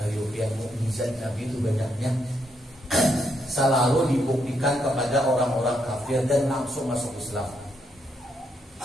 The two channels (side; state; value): both; normal; correlation 0.77